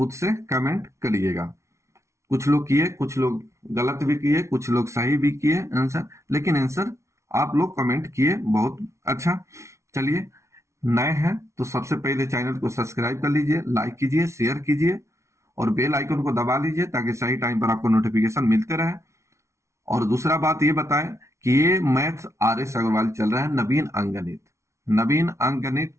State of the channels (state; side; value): late; left; 0.14 ms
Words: से कमेंट करिएगा। कुछ लोग किए, कुछ लोग गलत भी किए, कुछ लोग सही भी किए आंसर, लेकिन आंसर आप लोग कमेंट किए, बहुत अच्छा। चलिए, नए हैं तो सबसे पहले चैनल को सब्सक्राइब कर लीजिए, लाइक कीजिए, शेयर कीजिए और बेल आइकन को दबा लीजिए ताकि सही टाइम पर आपको नोटिफिकेशन मिलते रहे। और दूसरा बात ये बताएं कि ये मैथ आर एस अग्रवाल चल रहा है, नवीन अंकगणित। नवीन अंकगणित